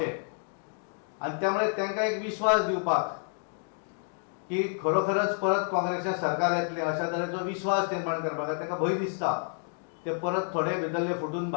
आनी त्यामुळे तांकां एक विश्वास दिवपाक की खरोखरच परत काँग्रेसचें सरकार येतलें अशा तरेचो विश्वास निर्माण करपाक तांकां भंय दिसता ते परत थोडे भितरले फुटून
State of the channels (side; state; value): right; silent; 58 dB below the other